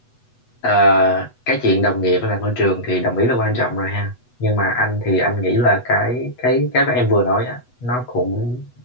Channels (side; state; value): right; late; 8.1 ms